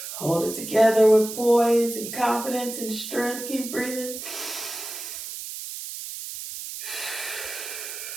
Hold it together with poise and confidence and strength. Keep breathing.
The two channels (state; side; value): noise; right; hiss, 8 dB below the sound